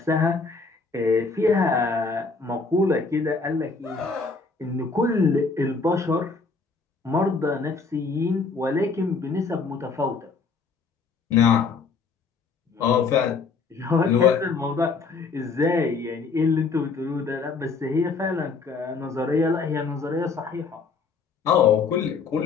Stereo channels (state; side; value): quieter; right; 4.6 dB